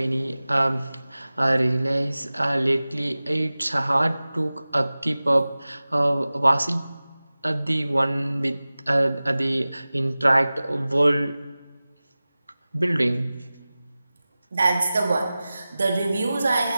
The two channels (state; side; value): inverted; both; correlation -0.97